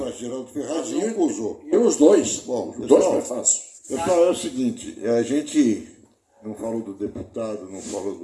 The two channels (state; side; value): identical; both; correlation 1.00